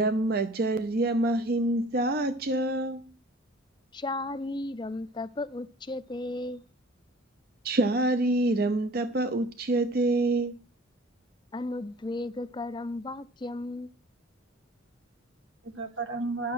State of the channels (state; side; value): normal; both; correlation 0.47